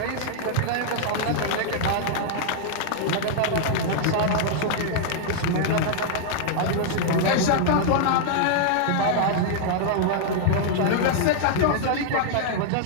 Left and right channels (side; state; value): both; different; correlation -0.01